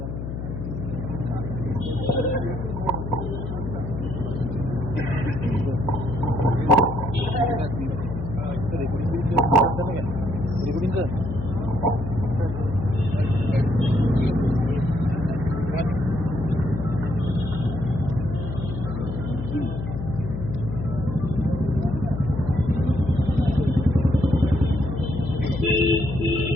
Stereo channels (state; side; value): noise; left; hum, 6 dB below the sound